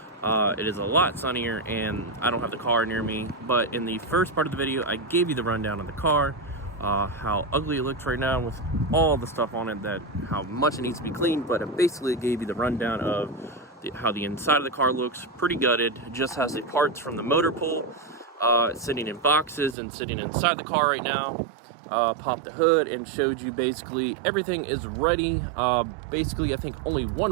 it is a lot sunnier and I don't have the car near me. But in the first part of the video, I gave you the rundown of the car, how ugly it looks right now with all the stuff on it, how much it needs to be cleaned. But it basically gave you the rundown of how the inside of the car looks. Pretty gutted. It just has the parts from the motor pool sitting in boxes and sitting inside the car right now. Popped the hood and showed you basically everything is ready. Basically, I think only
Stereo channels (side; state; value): left; drops out; at 19.8 s